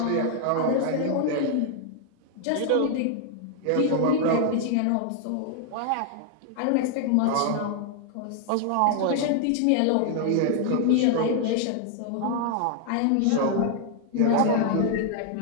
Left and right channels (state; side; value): different; both; correlation 0.00